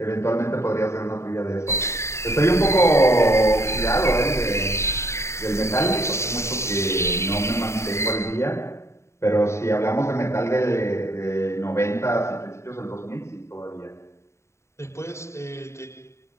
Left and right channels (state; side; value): late; right; 0.13 ms